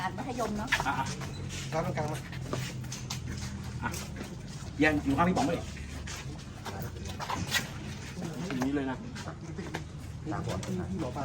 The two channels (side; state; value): both; identical; correlation 1.00